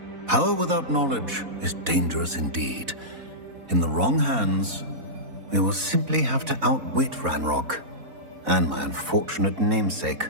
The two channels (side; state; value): left; late; 4.0 ms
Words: Power without knowledge is dangerous indeed. In the wrong hands, we will simply have to outwit Ranrock and my unfortunate namesake.